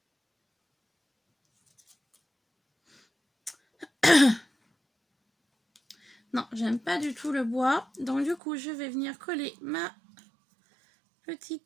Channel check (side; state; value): left; drops out; at 8.4 s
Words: Non, j'aime pas du tout le bois. Donc du coup, je vais venir coller ma